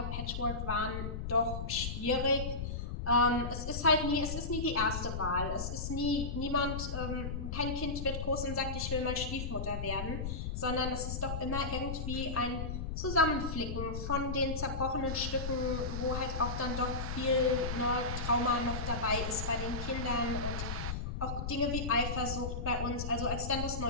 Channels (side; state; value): left; noise; rumble, 4 dB below the sound